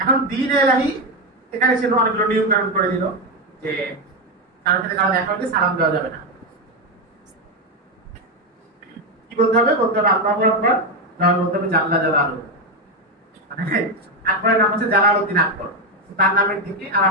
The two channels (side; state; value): both; normal; correlation 0.09